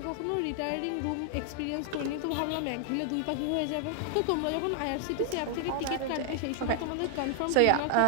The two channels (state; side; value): different; both; correlation 0.00